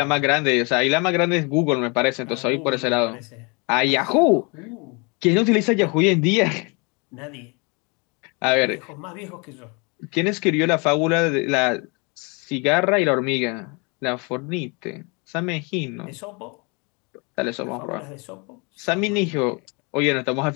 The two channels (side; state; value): right; quieter; 31.1 dB